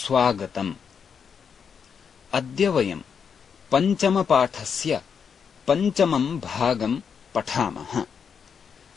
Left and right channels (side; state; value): right; quieter; 6.7 dB